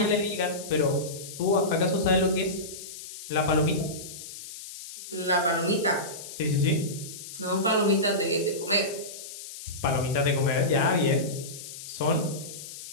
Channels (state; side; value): noise; left; hiss, 12 dB below the sound